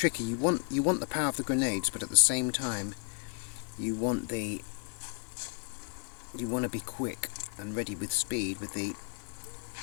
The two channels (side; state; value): right; quieter; 38.0 dB